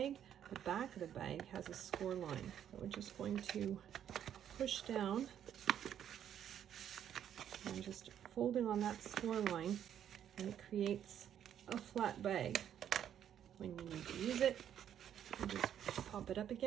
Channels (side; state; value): left; quieter; 9.8 dB